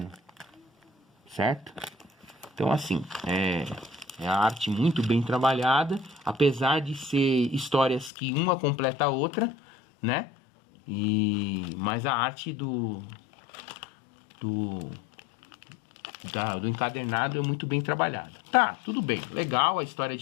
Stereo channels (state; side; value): drops out; right; at 8.1 s